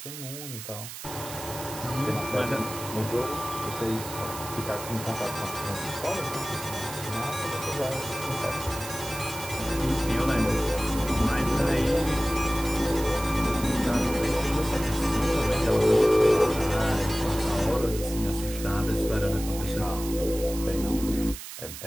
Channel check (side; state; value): right; noise; hiss, 11 dB below the sound